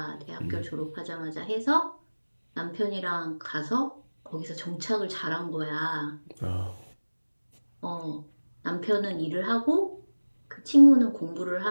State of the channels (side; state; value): both; inverted; correlation -1.00